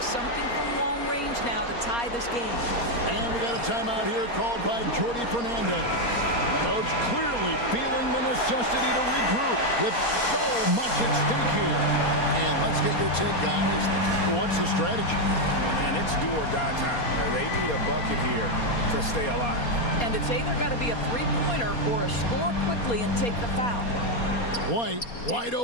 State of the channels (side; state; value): right; late; 4.2 ms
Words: something from long range now to tie this game. And we got a timeout here called by Jordi Fernandez. Coach clearly feeling the necessity to regroup with so much at stake here. And let's get your take, guys. What's the strategy? And it's do or die time. They need a bucket here to stay alive. And it's either got to be a three-pointer or a score quickly and take the foul. White, wide